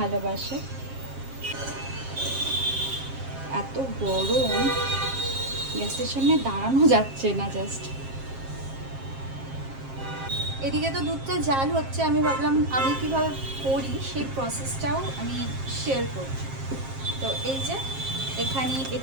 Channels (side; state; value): left; late; 7.5 ms